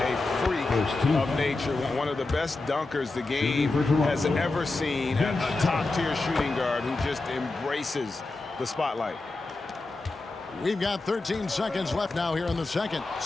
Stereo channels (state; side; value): quieter; right; 3.3 dB